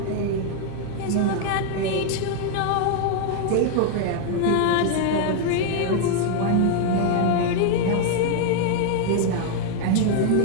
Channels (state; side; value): different; both; correlation 0.00